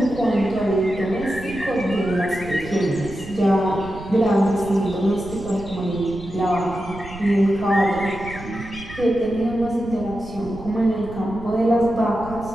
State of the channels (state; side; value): noise; right; rumble, 14 dB below the sound